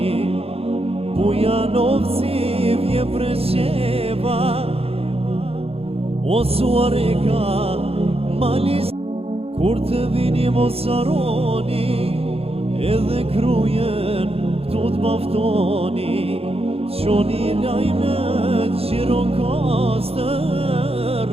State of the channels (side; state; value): left; late; 0.28 ms